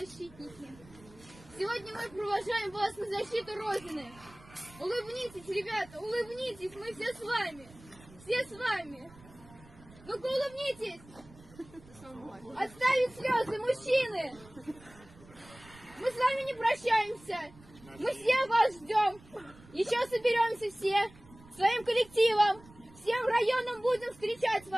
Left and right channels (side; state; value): right; noise; rumble, 23 dB below the sound